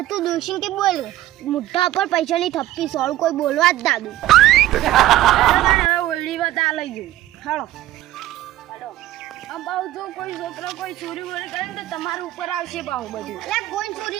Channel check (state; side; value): quieter; left; 14.5 dB